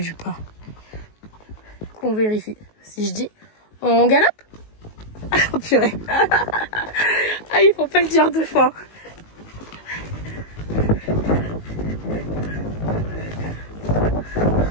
pas. On vérifie. Si je dis, on galope? Oh purée. Ah, il faut pas le dire 2 fois.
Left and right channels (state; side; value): late; right; 19 ms